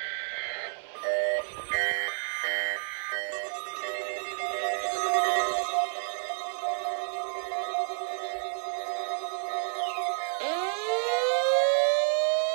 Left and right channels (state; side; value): silent; left; 58 dB below the other